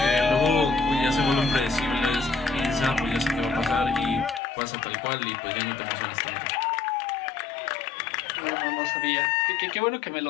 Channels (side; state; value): right; drops out; at 4.4 s